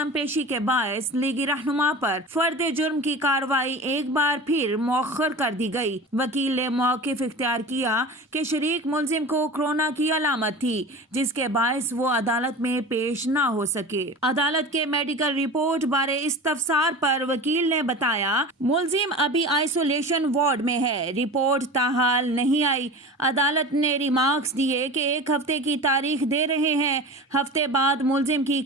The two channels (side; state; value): both; normal; correlation 0.33